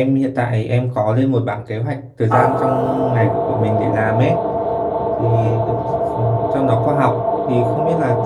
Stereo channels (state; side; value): identical; both; correlation 1.00